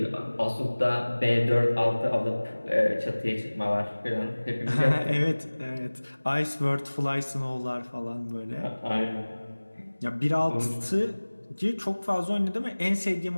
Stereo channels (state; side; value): inverted; both; correlation -1.00